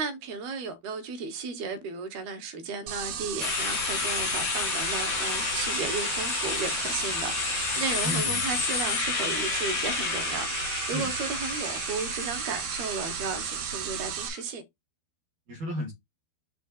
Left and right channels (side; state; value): left; late; 12 ms